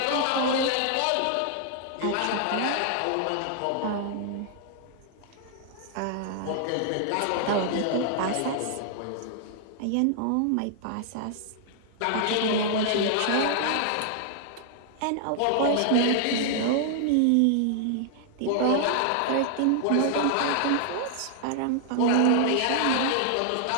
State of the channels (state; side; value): different; both; correlation -0.01